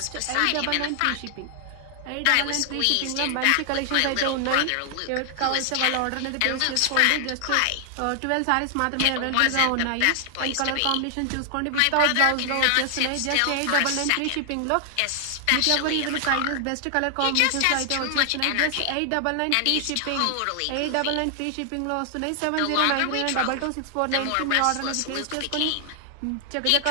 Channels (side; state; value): both; different; correlation 0.00